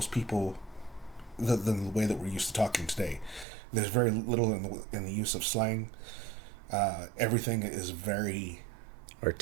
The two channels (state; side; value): drops out; left; at 3.5 s